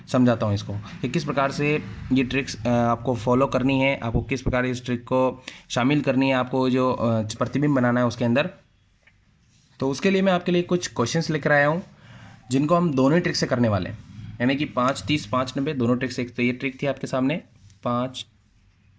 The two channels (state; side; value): identical; both; correlation 1.00